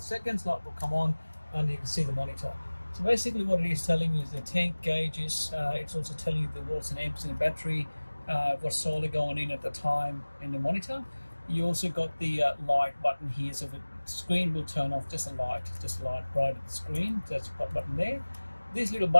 seconds, light will come on, and you can see the monitor. So basically what it is telling you is the tank gauges. It's also telling you the watts and amps in the battery, what's solar going in at the time in the monitor. You also got the light button here, so the screen will turn off just a light right at the screen. So that's the button there. This little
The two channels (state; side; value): inverted; both; correlation -1.00